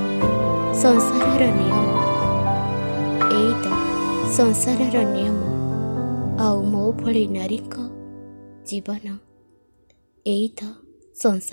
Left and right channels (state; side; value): inverted; both; correlation -1.00